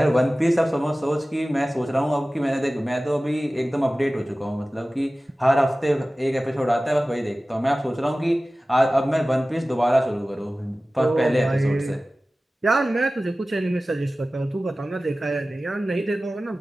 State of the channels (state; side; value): normal; both; correlation 0.97